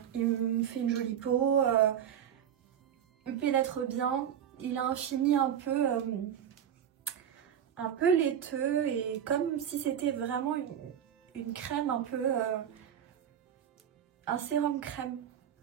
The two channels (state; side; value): quieter; left; 9.3 dB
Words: Il me fait une jolie peau, il pénètre bien. Il a un fini un peu laiteux et comme si c'était vraiment une crème un peu... un sérum crème,